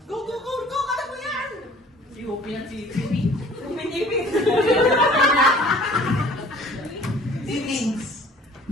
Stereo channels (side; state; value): both; normal; correlation 0.51